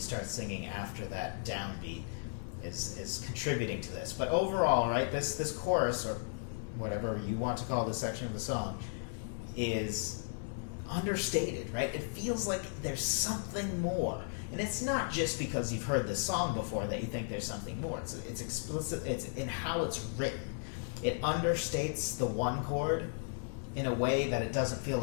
singing after that downbeat is contributing to this. But overall, right, this chorus, or whatever you want to call this section of the song, is understated, right? It feels like there's something more. And it's not just because you've heard this song before that you think there's something more. It's explicit, it's in how it's written. It understates the 1 chord in a way that it doesn't feel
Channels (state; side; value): silent; right; 54 dB below the other